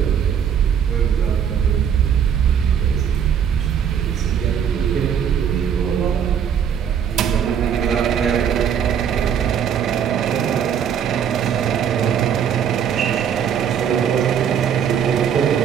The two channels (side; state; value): left; quieter; 8.3 dB